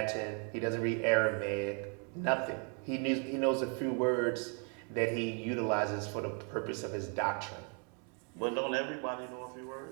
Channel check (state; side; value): quieter; left; 39.3 dB